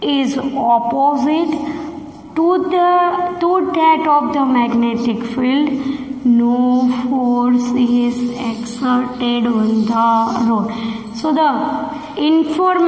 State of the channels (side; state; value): both; identical; correlation 1.00